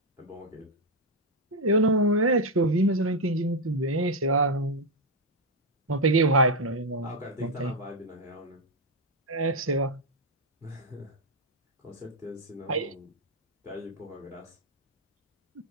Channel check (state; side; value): normal; both; correlation 0.02